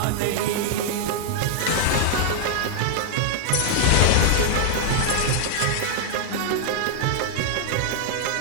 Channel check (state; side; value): different; both; correlation 0.00